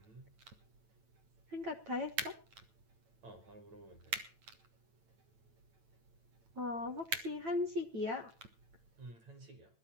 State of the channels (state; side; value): late; left; 9.0 ms